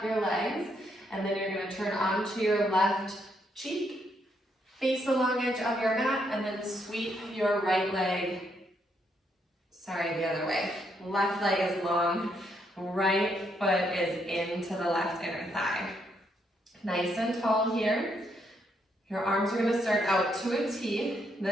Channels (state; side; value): normal; both; correlation 0.75